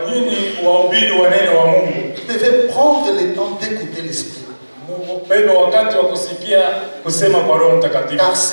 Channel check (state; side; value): inverted; both; correlation -1.00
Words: nini wahubiri wa neno wa Mungu devez prendre le temps d'écouter l'Esprit. Bebe wakati wa kusikia kusema kwa Roho Mtakatifu. Car